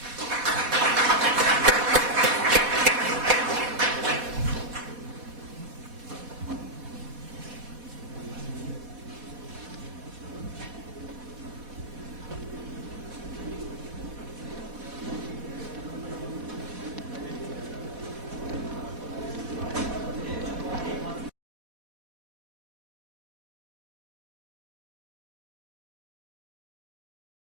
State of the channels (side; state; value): left; late; 4.1 ms